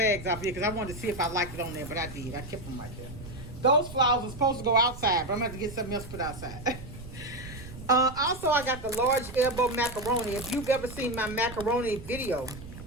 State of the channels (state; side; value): noise; right; rumble, 13 dB below the sound